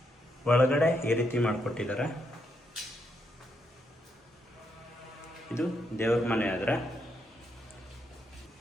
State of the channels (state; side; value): normal; both; correlation 0.79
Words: ಒಳಗಡೆ ಈ ರೀತಿ ಮಾಡಿಕೊಟ್ಟಿದ್ದಾರೆ. ಇದು ದೇವ್ರ ಮನೆ. ಆದರೆ